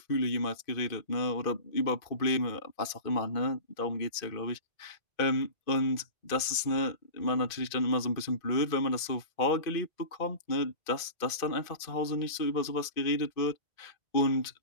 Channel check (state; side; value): late; right; 2.5 ms